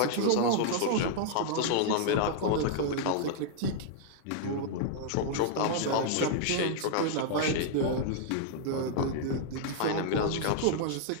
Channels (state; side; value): different; both; correlation -0.01